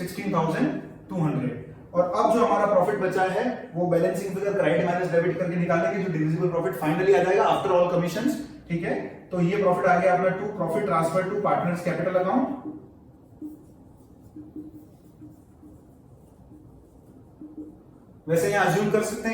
और अब जो हमारा प्रॉफिट बचा है वो balancing figure credit minus debit करके निकालेंगे, जो डिविजिबल प्रॉफिट फाइनली आ जाएगा आफ्टर ऑल कमीशंस। ठीक है, तो ये प्रॉफिट आ गया अपना to profit transfer to partners capital account. वैसे यहाँ अज्यूम कर सकते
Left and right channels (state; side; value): identical; both; correlation 1.00